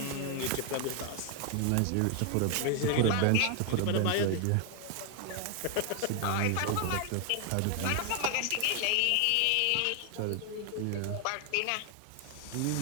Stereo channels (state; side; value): different; both; correlation 0.00